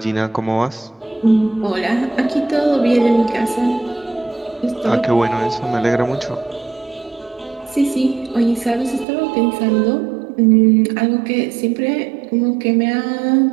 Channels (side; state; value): left; drops out; at 9.1 s